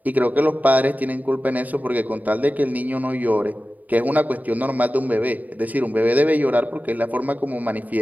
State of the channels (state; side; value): late; left; 0.076 ms